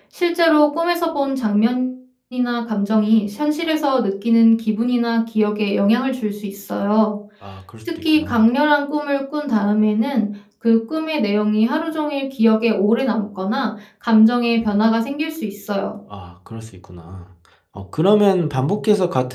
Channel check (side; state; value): both; identical; correlation 1.00